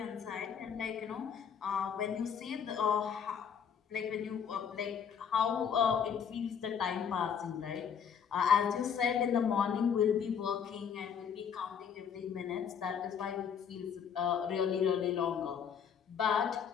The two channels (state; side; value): quieter; right; 7.5 dB